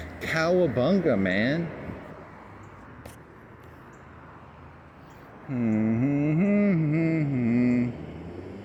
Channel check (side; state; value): both; identical; correlation 1.00